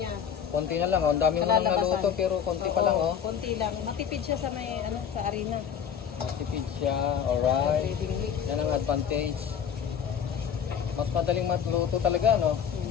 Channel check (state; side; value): quieter; right; 8.0 dB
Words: Konti na lang. Oh. Ang dami mo nang naluto pero konti pa lang. Oh. Konti lang. Matipid siya sa may sa arena. Matipid siya. Alright. Breathing mix. Yan ang advantage. Mas madaling matluto talaga, no?